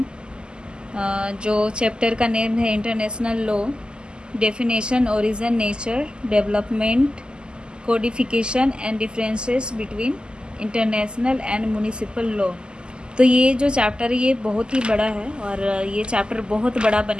जो चैप्टर का नेम है international law, definition, origin, nature, development, codification and differences between international and municipal law. तो ये जो चैप्टर है ये बहुत ही बड़ा है और ये चैप्टर बहुत बड़ा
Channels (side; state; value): left; late; 0.048 ms